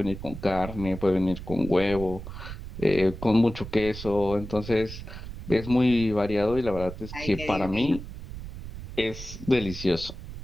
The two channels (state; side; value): noise; right; rumble, 11 dB below the sound